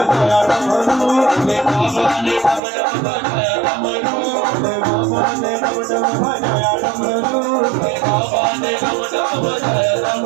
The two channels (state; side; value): drops out; left; at 2.6 s